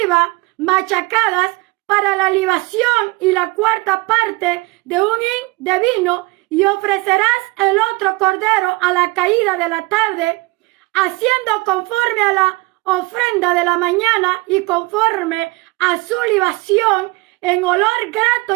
machacadas para la libación y la 4ª parte de un hin de vino, y ofrecerás el otro cordero a la caída de la tarde, haciendo conforme a la ofrenda de la mañana y conforme a su libación en olor grato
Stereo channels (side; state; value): left; quieter; 23.3 dB